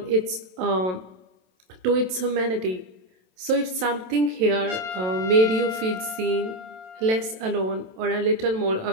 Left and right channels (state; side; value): late; left; 27 ms